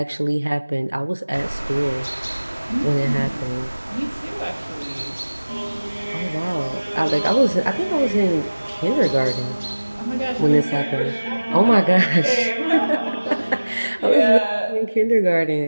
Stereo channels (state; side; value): inverted; both; correlation -1.00